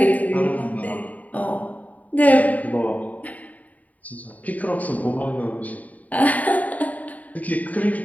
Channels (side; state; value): right; late; 0.073 ms